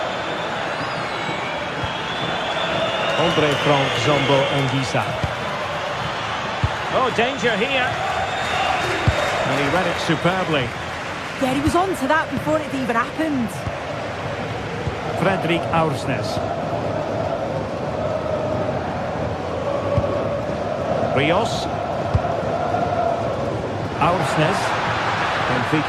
Andre Frank Zambo Anguissa. Oh, danger here. And he read it superbly. Yeah, he was on to that before it even happened. Fredrik Aursnes. Rios. Aursnes.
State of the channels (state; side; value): identical; both; correlation 1.00